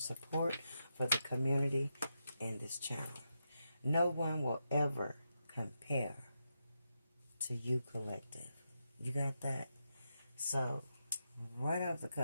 for the community and this channel. No one will ever compare to you, Collective. You got that? So, right off the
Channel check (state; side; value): inverted; both; correlation -0.85